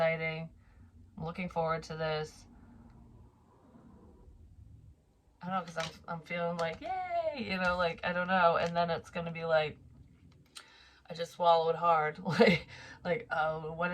I'm looking forward to this. I don't know, because I'm feeling like, yay, you know, like, I don't know. And then it's going to be like, I just swallowed hard. Oh, what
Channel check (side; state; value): both; identical; correlation 1.00